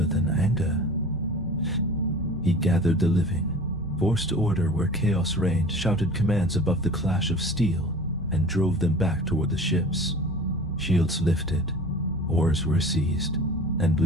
than anger. He gathered the living, forced order where chaos reigned, shouted commands above the clash of steel, and drove them back toward the ships. Shields lifted, oars were seized, and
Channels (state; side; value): normal; both; correlation 0.41